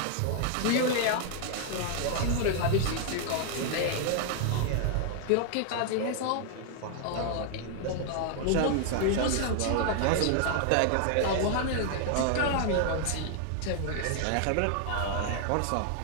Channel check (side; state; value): both; different; correlation 0.00